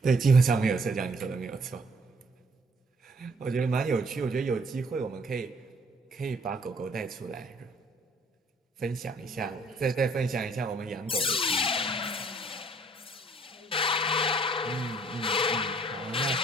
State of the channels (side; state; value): both; normal; correlation 0.62